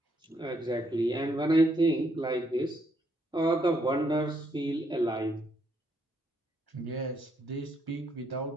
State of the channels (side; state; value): both; normal; correlation 0.74